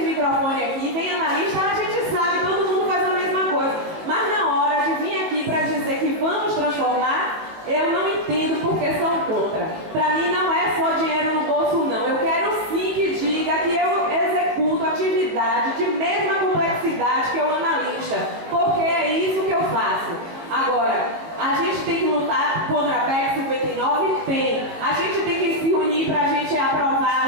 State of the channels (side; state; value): left; late; 19 ms